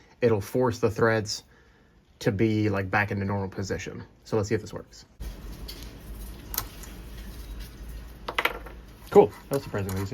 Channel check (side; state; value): both; identical; correlation 1.00